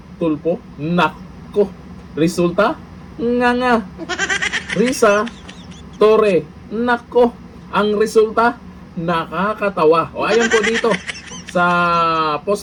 Tulfo. Nako. Resulta? Nga. Risa Torre. Nako. Ang resulta? Nakakatawa. O ayan po dito sa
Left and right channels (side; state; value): both; identical; correlation 1.00